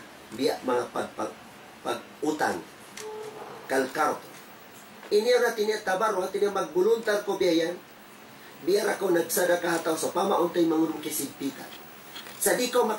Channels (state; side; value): identical; both; correlation 1.00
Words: Biya mga pag-utang. Kalkard. Ini na tinya tabarru tinya mag-voluntar ko biyan. Biar ako nagsadaka hataw sa pamauntay mangurong kisigpitan. Sa di ko